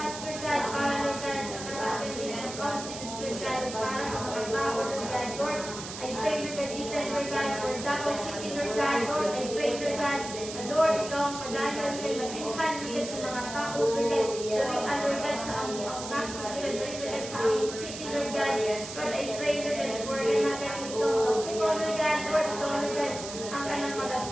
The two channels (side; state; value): right; noise; hiss, 10 dB below the sound